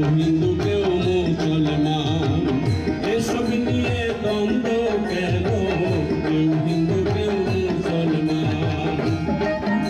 হিন্দু কেউ মুসলমান, এসব নিয়ে দ্বন্দ্ব কেন? কেউ হিন্দু কেউ মুসলমান।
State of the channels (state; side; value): identical; both; correlation 1.00